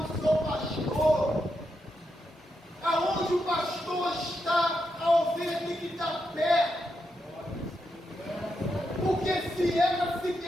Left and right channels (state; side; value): normal; both; correlation 0.84